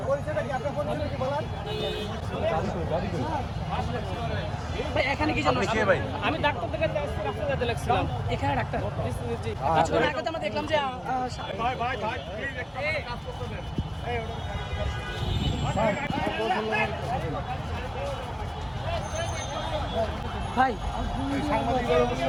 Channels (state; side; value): identical; both; correlation 1.00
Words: ভাই এখানে কি জানো? আপনি কে ভাই? আমি ডাক্তার থেকে রাস্তা যেতে লাগছিলাম। এখানে ডাক্তার। জি। কিছুক্ষণ আগে তো আমরা দেখলাম যে ভাই